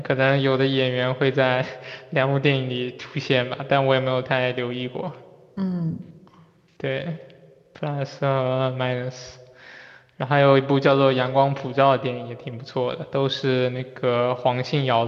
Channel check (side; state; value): both; identical; correlation 1.00